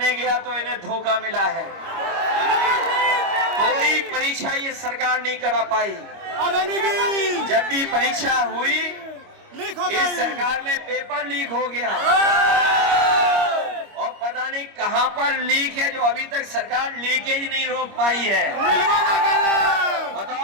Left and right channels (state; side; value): late; left; 25 ms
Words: गया तो इन्हें धोखा मिला है। कोई परीक्षा ये सरकार नहीं करा पाई। जब भी परीक्षा हुई इस सरकार में पेपर लीक हो गया, और पता नहीं कहां पर लीक है जो अभी तक सरकार लीकेज नहीं रोक पाई है।